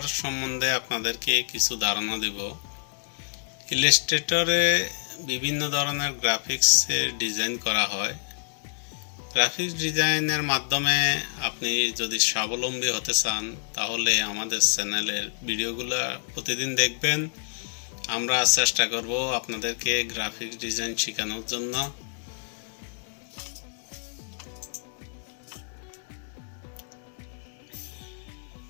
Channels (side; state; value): right; silent; digital silence